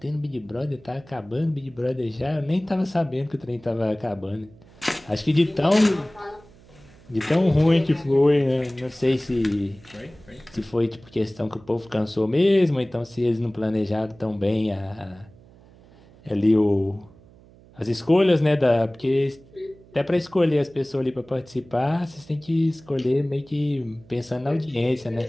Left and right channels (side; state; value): right; noise; hum, 25 dB below the sound